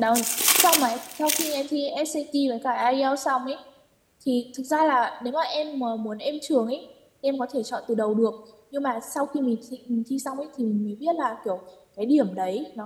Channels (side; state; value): both; identical; correlation 1.00